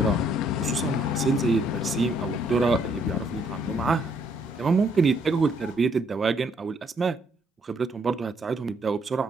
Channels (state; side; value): normal; both; correlation 0.69